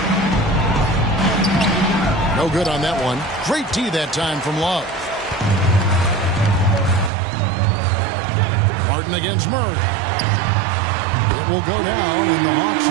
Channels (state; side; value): drops out; left; at 7.1 s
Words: No good on that one. Great D that time from Love. Martin against Murray. It will go down, and the Hawks